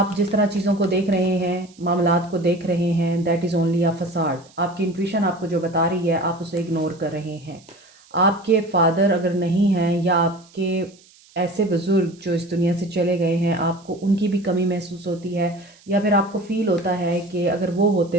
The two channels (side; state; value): right; noise; hiss, 27 dB below the sound